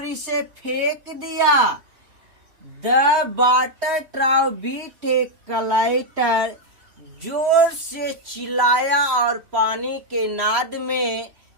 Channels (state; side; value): late; left; 3.0 ms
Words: इसे फेंक दिया। द वाटर ट्राउ बीट ए कलाइटर, जोर से चिल्लाया और पानी के नाद में